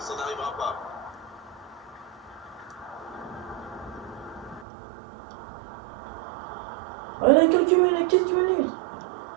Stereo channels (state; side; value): drops out; left; at 4.7 s